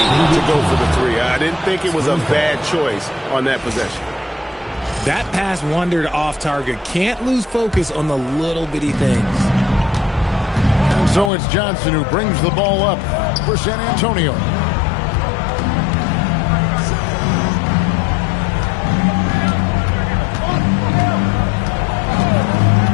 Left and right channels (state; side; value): drops out; right; at 11.3 s